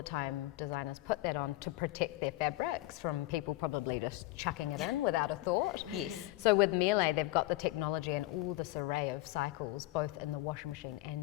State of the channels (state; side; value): quieter; right; 17.9 dB